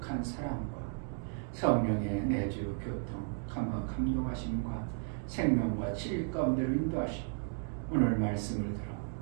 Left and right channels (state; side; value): silent; left; 55 dB below the other